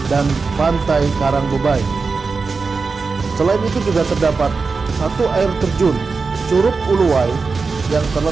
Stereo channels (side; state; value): left; quieter; 4.5 dB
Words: dan Pantai Karang Bebai. Selain itu juga terdapat 1 air terjun Curug Uluwai yang